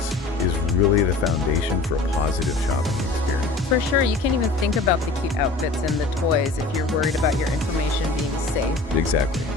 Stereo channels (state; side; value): quieter; right; 3.4 dB